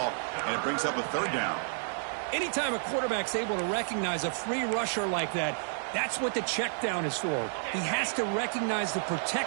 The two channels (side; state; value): left; silent; digital silence